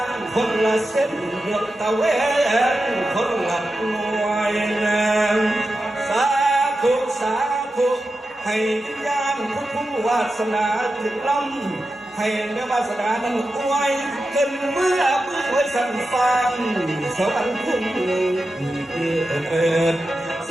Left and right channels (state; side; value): normal; both; correlation 0.91